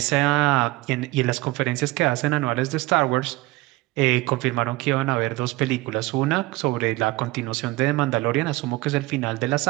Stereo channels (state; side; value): quieter; left; 20.6 dB